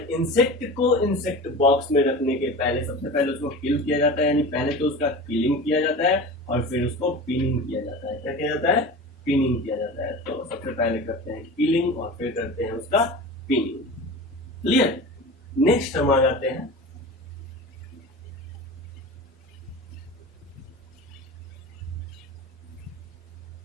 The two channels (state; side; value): normal; both; correlation 0.33